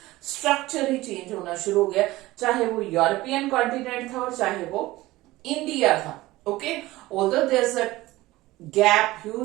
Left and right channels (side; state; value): left; quieter; 18.3 dB